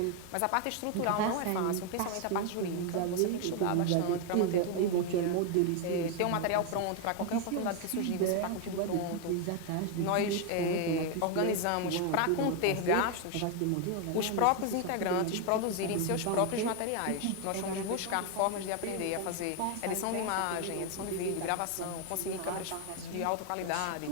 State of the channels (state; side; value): different; both; correlation 0.01